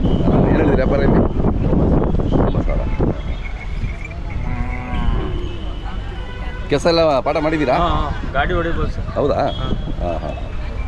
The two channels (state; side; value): identical; both; correlation 1.00